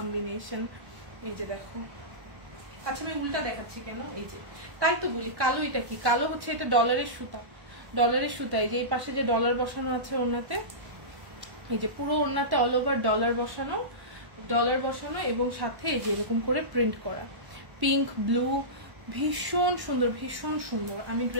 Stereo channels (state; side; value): late; left; 1.1 ms